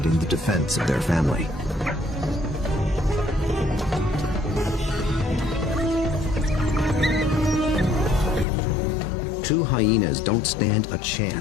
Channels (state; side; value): drops out; right; at 8.5 s